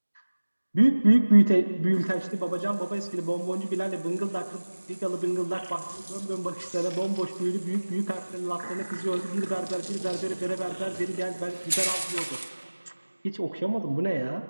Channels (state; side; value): inverted; both; correlation -1.00